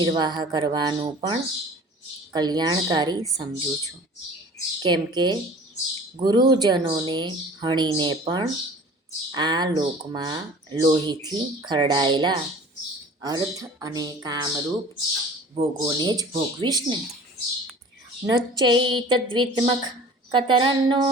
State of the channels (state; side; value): normal; both; correlation 0.44